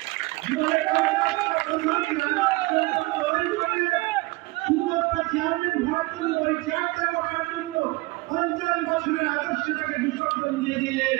জীবনের 50টা চেয়ারম্যান হওয়ার জন্য ওই চেয়ারটা রাখার জন্য 50 বছরের আদর্শটাকে বিসর্জন দিয়ে দিলেন।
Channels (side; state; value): left; quieter; 22.6 dB